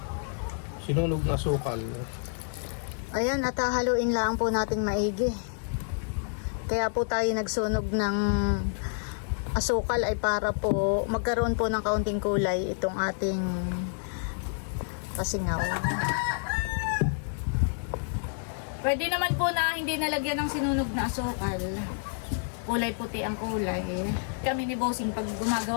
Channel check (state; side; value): silent; right; digital silence